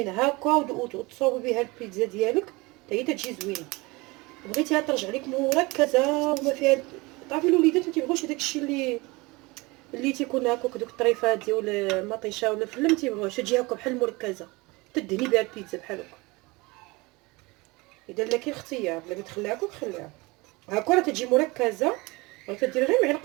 هكا وتصوبي بها البيتزا ديالك حتى هي تجي زوينه. بغيتيها ترجع لك مركزه وما فيها، تعرفي الوليدات ما تيبغوش داك الشيء اللي تيكون هكاك دوك الطريفات ديال المطيشه ولا الفله، ما تيبغوش تجي هكا بحال مركزه تدهني بها البيتزا بحال هكا. اذا لا كاين اختيار بغيتي تخليها هكا خليها هكا راه تجي مركزه، راه تدير غير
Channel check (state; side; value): quieter; left; 24.0 dB